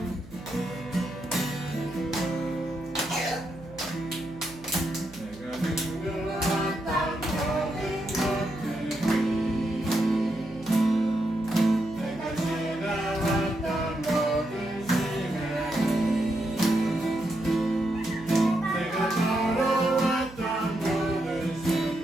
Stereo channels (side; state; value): right; noise; hum, 19 dB below the sound